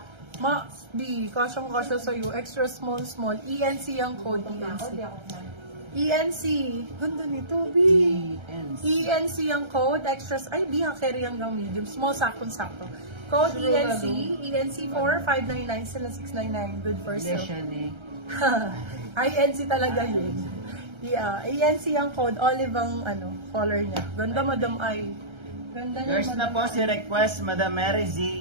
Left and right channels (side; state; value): left; late; 1.3 ms